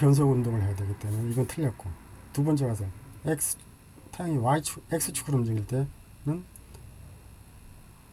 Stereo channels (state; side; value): identical; both; correlation 1.00